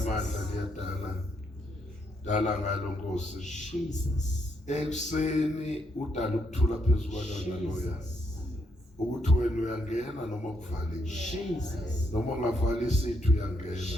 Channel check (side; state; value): both; normal; correlation 0.76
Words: liyadala. Dala ngalo Nkosi. Jesus. Ekuseni udala ukuthula phezulu kwalona loya. Ukuthi wena uyangena noma kuvaliwe. Jesus. Noma ungavali isithu uyangena.